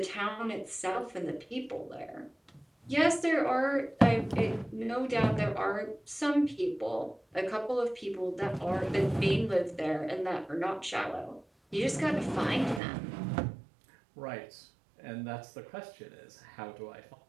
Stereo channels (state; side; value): drops out; left; at 12.8 s